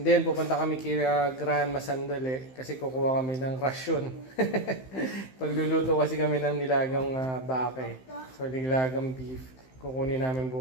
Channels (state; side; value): late; right; 15 ms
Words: then, pupunta kami kila Grand Masandali kasi kukuha kami ng rasyon. Pagluluto kasi kami ng nilagang bake. So, nilagang beef. Kukunin namin